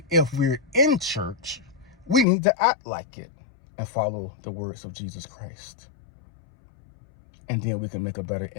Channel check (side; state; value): right; drops out; at 2.2 s